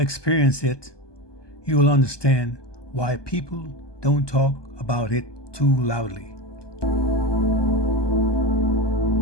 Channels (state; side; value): late; right; 1.2 ms